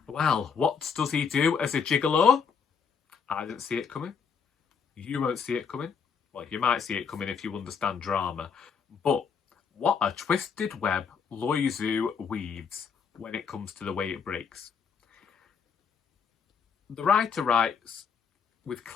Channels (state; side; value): quieter; right; 6.2 dB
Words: Well, what does he do as a gigolo? I didn't see it coming. You won't see it coming. Well, you might see it coming if you understand drama. But what a twisted web Loizou weaves when it comes to The Way It Breaks. The writer writes with